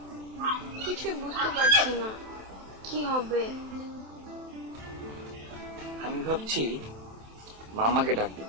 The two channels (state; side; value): late; left; 27 ms